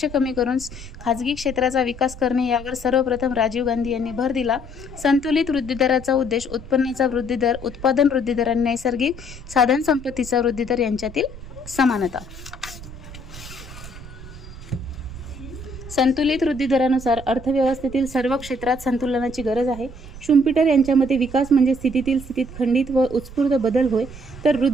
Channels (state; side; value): noise; right; rumble, 14 dB below the sound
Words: कमी करून खाजगी क्षेत्राचा विकास करणे यावर सर्वप्रथम राजीव गांधी यांनी भर दिला. संतुलित वृद्धिदराचा उद्देश उत्पन्नाचा वृद्धिदर, उत्पादन वृद्धिदर आणि नैसर्गिक साधन संपत्तीचा वृद्धिदर यांच्यातील समानता. संतुलित वृद्धी दरानुसार अर्थव्यवस्थेतील सर्व क्षेत्रात संतुलनाची गरज आहे. शुम्पीटर यांच्या मते विकास म्हणजे स्थितीतील स्थितीत खंडित व उत्स्फूर्त बदल होय, तर